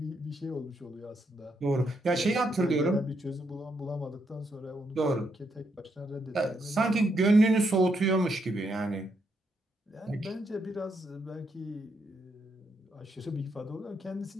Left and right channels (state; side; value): normal; both; correlation 0.78